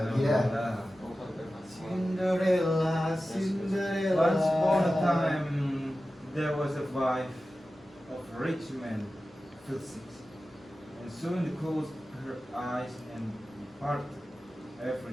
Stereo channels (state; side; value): normal; both; correlation 0.94